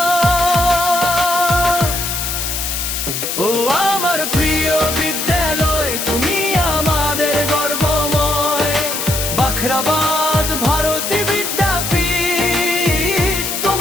ও আমার প্রিয় বিদ্যালয়, তুমি আমাদের গর্বময়। বাখরাবাদ ভারতী বিদ্যাপীঠ,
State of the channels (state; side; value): noise; left; hiss, 3 dB below the sound